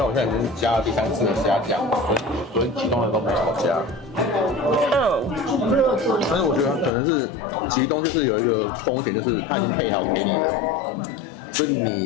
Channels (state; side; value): drops out; right; at 6.9 s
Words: 我现在已经加了第3次的虾酱，所以其中的都没有加。但是我觉得可能是吉东就是有一个风险，就是它已经配好给你了。所以